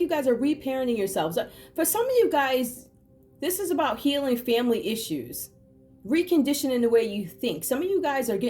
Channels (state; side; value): identical; both; correlation 1.00